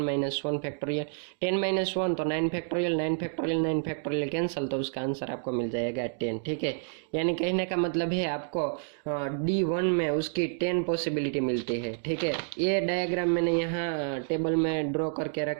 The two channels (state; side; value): silent; left; digital silence